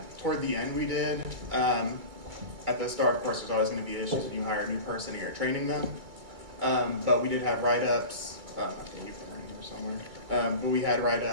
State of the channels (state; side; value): late; left; 2.3 ms